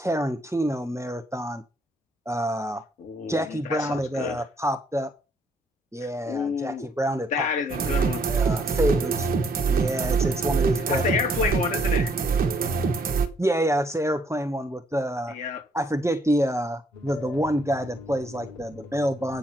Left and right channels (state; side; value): normal; both; correlation 0.68